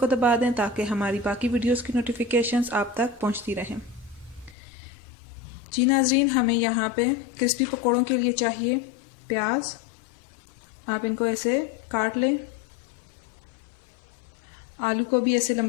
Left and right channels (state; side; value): drops out; right; at 4.5 s